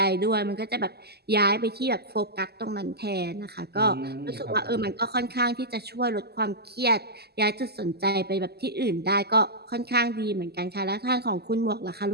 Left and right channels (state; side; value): late; left; 0.47 ms